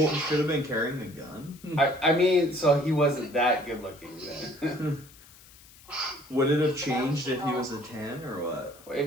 He should have been carrying a gun. I mean, so he wasn't that good looking then. Would it have changed if he was a 10 or what?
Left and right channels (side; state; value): left; noise; hiss, 23 dB below the sound